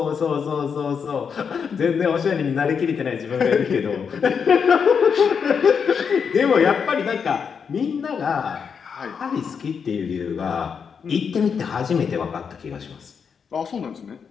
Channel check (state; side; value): quieter; right; 6.5 dB